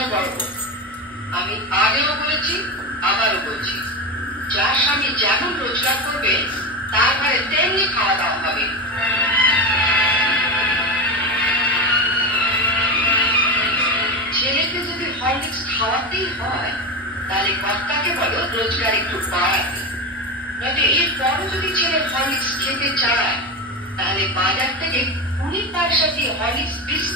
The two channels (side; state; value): both; normal; correlation 0.19